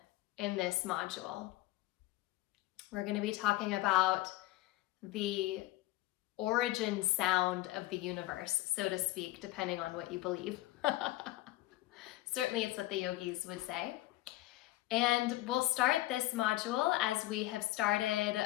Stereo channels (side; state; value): right; quieter; 17.6 dB